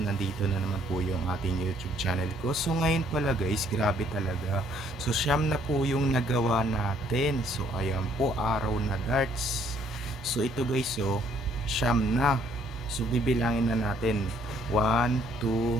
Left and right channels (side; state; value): both; normal; correlation 0.64